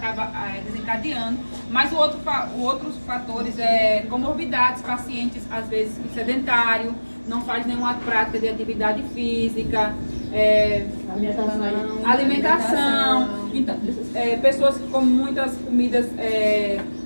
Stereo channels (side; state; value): both; inverted; correlation -1.00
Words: desencadeando. Mas outros fatores é comorbidades, pacientes às vezes sedentário, não faz nenhuma prática de atividade física, alimentação. Então, pessoas que comem muitas comidas